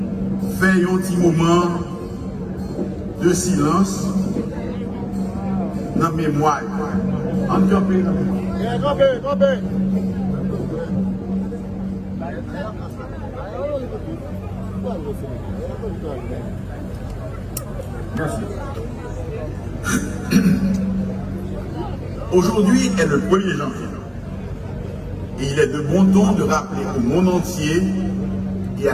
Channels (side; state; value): both; identical; correlation 1.00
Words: faire un petit moment de silence dans la mémoire. En campé, Merci. Aujourd'hui est le 1er janvier. Et il est de bon ton de rappeler au monde entier et